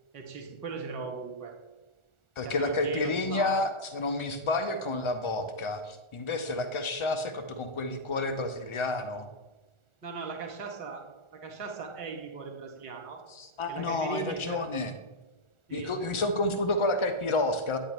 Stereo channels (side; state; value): right; late; 1.4 ms